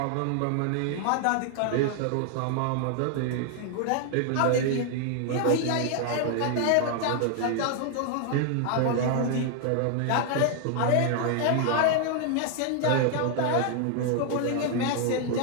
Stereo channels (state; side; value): different; both; correlation 0.00